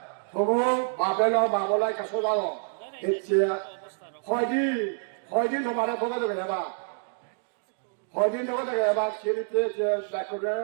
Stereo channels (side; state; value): left; silent; digital silence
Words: তবু বাবেলাই কাছো যাও এসে হয়দিন তোমার ভোগ দেবে হেবা হয়দিন ভোগ দেবে হেবা সেরিতে যে দেখবে